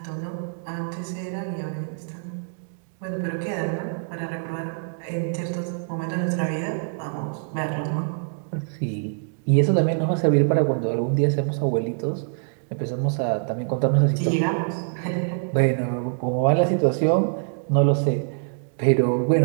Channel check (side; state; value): left; silent; digital silence